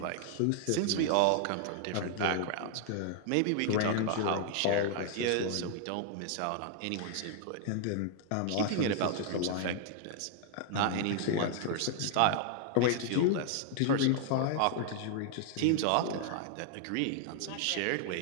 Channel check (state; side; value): different; both; correlation 0.00